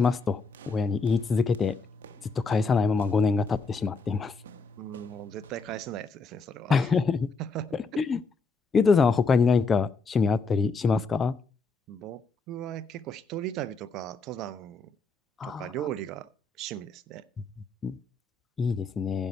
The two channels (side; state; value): right; quieter; 4.1 dB